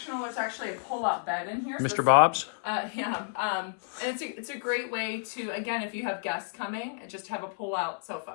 There's actually a pull-out bed in here. Mr. Bob's? Yeah. And it's a great way to, again, if you have guests coming, just have a pull-out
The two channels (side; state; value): right; silent; 58 dB below the other